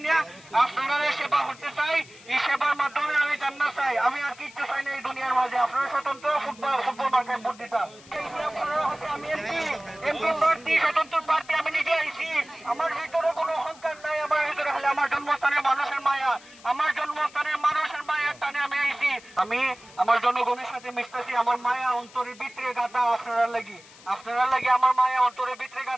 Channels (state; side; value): noise; left; hiss, 22 dB below the sound